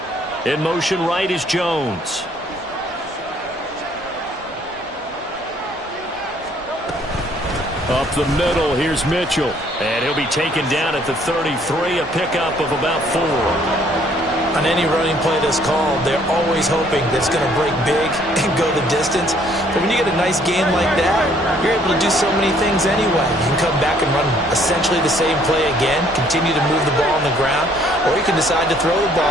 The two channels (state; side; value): normal; both; correlation 0.63